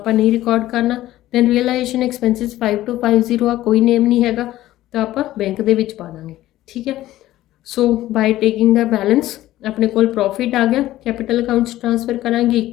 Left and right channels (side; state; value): right; quieter; 15.0 dB